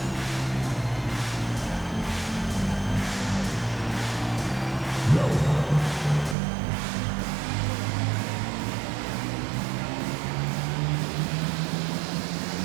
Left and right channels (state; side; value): drops out; left; at 6.4 s